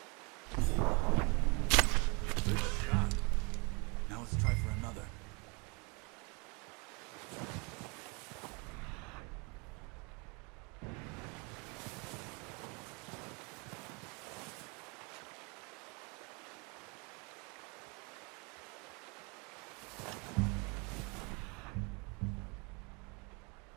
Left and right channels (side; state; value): left; quieter; 31.2 dB